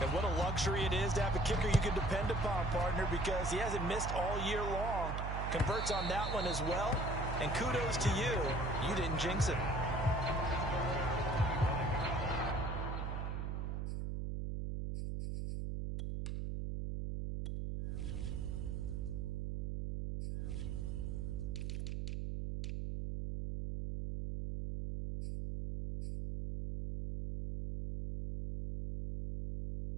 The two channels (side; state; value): right; noise; hum, 2 dB below the sound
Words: what a luxury it is to have a kicker you can depend upon, partner, because he hasn't missed all year long. Converts on that one as well. And kudos to you. You didn't jinx it.